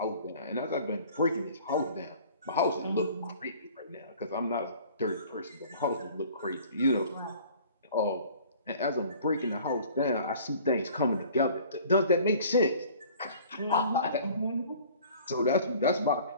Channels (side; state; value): both; inverted; correlation -0.49